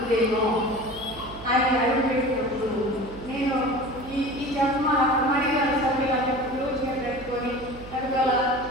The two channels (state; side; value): noise; right; hum, 16 dB below the sound